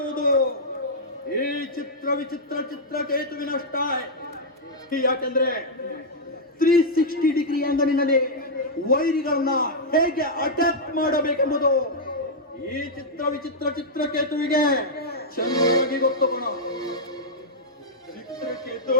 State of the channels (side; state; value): both; normal; correlation -0.07